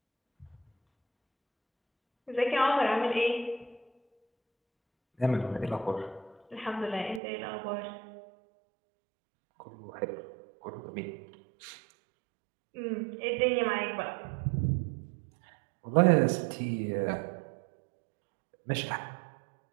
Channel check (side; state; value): left; drops out; at 7.2 s